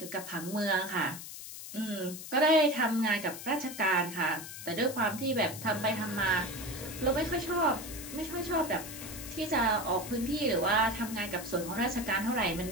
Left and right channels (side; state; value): left; noise; hiss, 11 dB below the sound